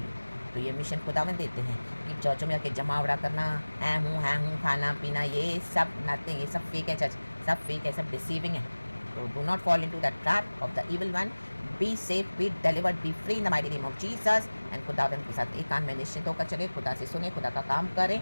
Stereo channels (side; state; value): both; inverted; correlation -1.00